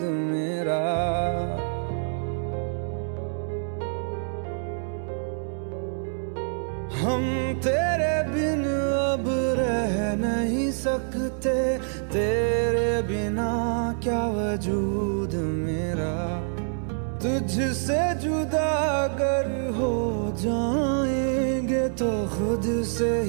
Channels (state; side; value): silent; left; digital silence